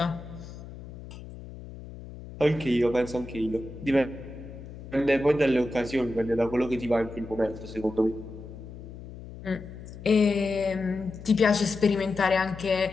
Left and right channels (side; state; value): left; noise; hum, 14 dB below the sound